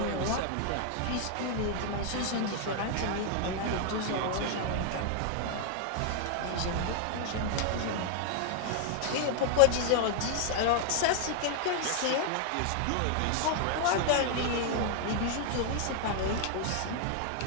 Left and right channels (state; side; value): different; both; correlation 0.00